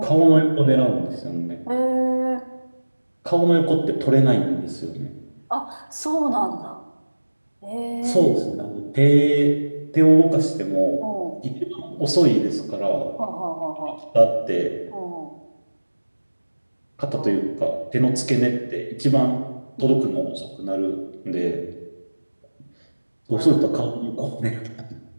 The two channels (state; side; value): inverted; both; correlation -1.00